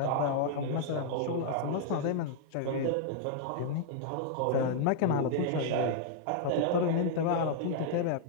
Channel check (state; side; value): different; both; correlation -0.01